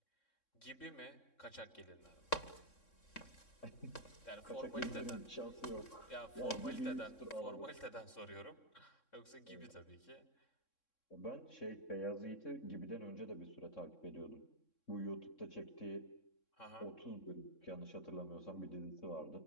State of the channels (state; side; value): late; right; 3.6 ms